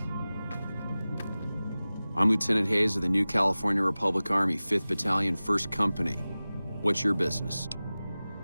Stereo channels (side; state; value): both; inverted; correlation -0.97